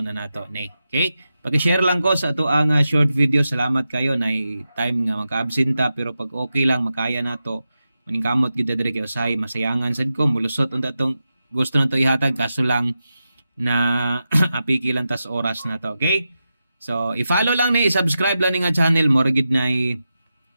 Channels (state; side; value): inverted; both; correlation -0.90